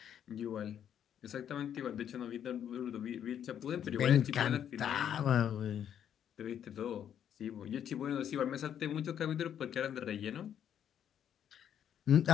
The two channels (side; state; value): right; quieter; 9.4 dB